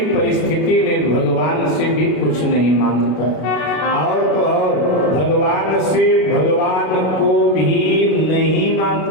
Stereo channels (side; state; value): right; late; 32 ms